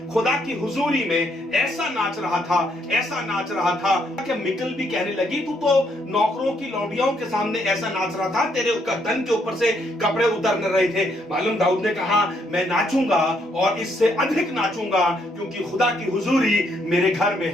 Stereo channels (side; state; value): both; normal; correlation 0.73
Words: खुदा की हुजूरी में ऐसा नाच रहा था, ऐसा नाच रहा था कि मिकल भी कहने लगी तू तो नौकरों की लौंडियों के सामने ऐसा नाच रहा था, तेरे तन के ऊपर से कपड़े उतर रहे थे। मालूम दाऊद ने कहा मैं नाचूंगा और इससे अधिक नाचूंगा, क्योंकि खुदा की हुजूरी मेरे घर में